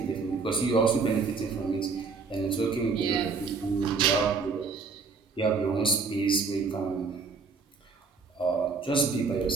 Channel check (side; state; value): left; quieter; 4.8 dB